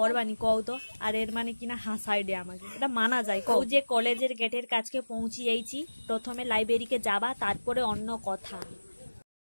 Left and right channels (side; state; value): both; inverted; correlation -1.00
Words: কও তো। আর এর মানে কিনা হাসাই দে আমাকে, এটা মানা যায় কও? যে কলেজের গেটের কাছকে পৌঁছিয়েছি, প্রথমে লাইব্রেরিকে যাবা, তারপরে অন্য কথা।